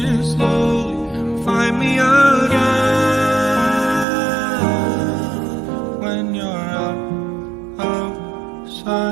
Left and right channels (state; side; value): drops out; left; at 4.0 s